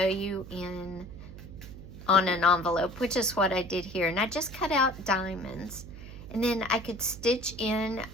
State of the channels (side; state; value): right; noise; hum, 14 dB below the sound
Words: you on an envelope, which is what I did here. And I just cut out diamonds. And then I could stitch in